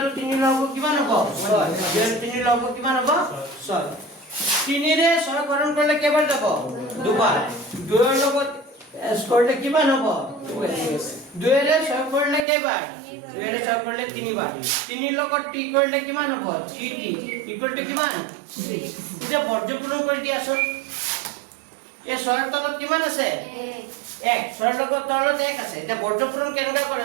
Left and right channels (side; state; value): left; drops out; at 12.4 s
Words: 3 লব কিমান হ'ব 6 2 আৰু 3 লব কিমান হ'ব 6 3 ৰে 6 হৰণ কৰিলে কেইবাৰ যাব দুবাৰ 2 ৰ লগত s কৰিলে কিমান হ'ব 2 ৰে 6 কৰিলে কেইবাৰ 2 ৰে 6 কৰিলে 3 বাৰ 3 লগত t কৰিলে কিমান হ'ব 3t ইকুৱেল টু কিমান 6 এটা বৰ্গপূৰণ কৰি দিয়াছোন এই 6 ৰ তলত কিমান আছে 1 6 ৰ লগত তলত 1 আছে এটা বৰ্গপূৰণ কেনেকা কৰে